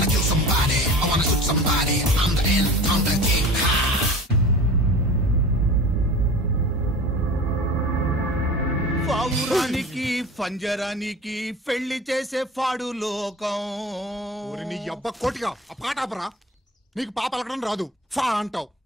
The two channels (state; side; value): normal; both; correlation 0.37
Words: పావురానికి పంజరానికి పెళ్లి చేసే ఫాడు లోకం. నీ అబ్బ కోటిగా ఆ పాట ఆపరా. నీకు పా పలకడం రాదు, ఫా అంటావు.